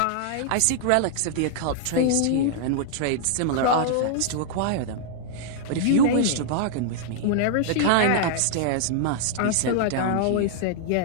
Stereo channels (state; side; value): different; both; correlation -0.01